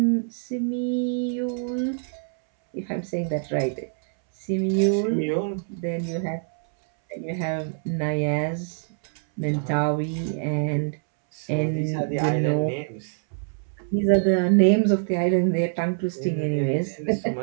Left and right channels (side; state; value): left; silent; 62 dB below the other